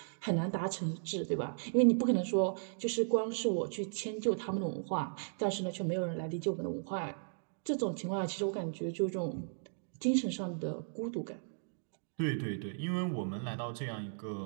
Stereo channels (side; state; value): left; silent; digital silence